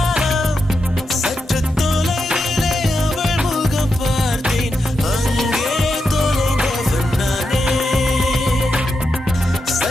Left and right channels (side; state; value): both; normal; correlation 0.86